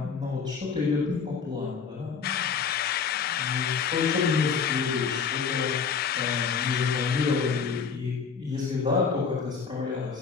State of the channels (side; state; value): right; quieter; 5.9 dB